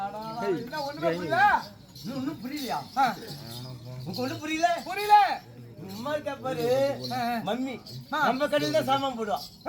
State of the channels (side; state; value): both; identical; correlation 1.00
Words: ஒண்ணுமே புரியல? இன்னும் புரியலையா? ஒன்னும் புரியல புரியல. சும்மா இருக்கா பாரு. மம்மி நம்ம கடையில தான் சாமான் போடுவான்.